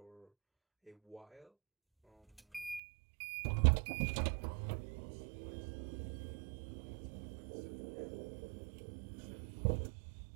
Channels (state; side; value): drops out; left; at 2.8 s